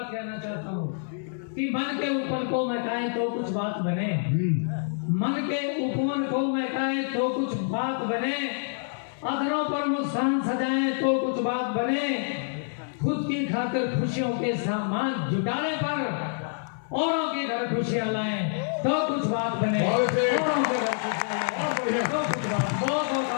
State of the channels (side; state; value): right; silent; digital silence